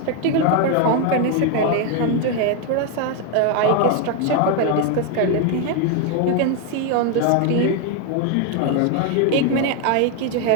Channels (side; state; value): both; different; correlation 0.01